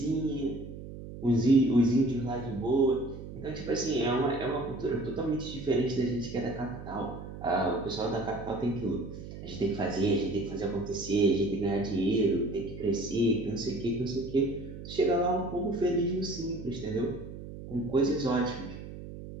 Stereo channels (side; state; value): right; noise; hum, 12 dB below the sound